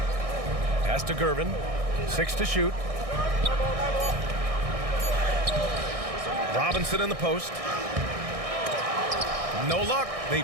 Pass to Gervin. 6 to shoot. Robinson in the post. No luck. They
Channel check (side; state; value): left; late; 1.6 ms